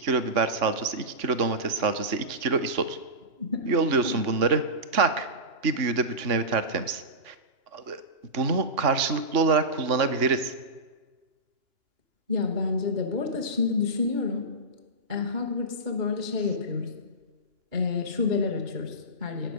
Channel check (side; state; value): left; late; 2.9 ms